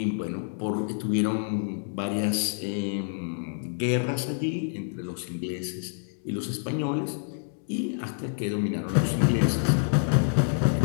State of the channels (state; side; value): silent; right; digital silence